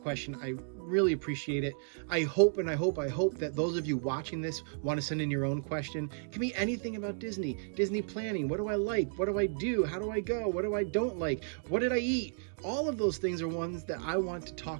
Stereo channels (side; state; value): left; silent; digital silence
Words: question. I really appreciate it. I hope that those of you watching this want to send in your own question. It can be anything about Disney planning. What do I like? What do I do? How do I go? What do I don't like? What did I eat? All of those things are ones that I want to